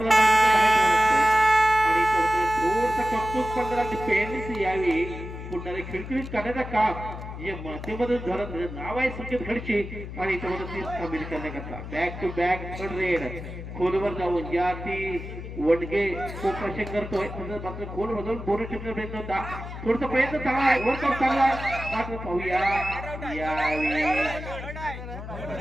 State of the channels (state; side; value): noise; left; hum, 10 dB below the sound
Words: आणि थोडस कौतुक करणारा डिफेन्स यावेळी पुन्हा खिळखिळीत करण्याचं काम जे माध्यमधून धरत नाव आहे संकेत खडशी आणि त्यामध्ये ती सामील करण्याकरता back to back third raid खोलवर जाऊन या ती वडगे खूप प्रश्न करतोय मात्र खोल मधून बोनस ठेवण्याचा प्रयत्न होता थोडसा प्रयत्न चांगला आहे वर चांगला मात्र पाहूया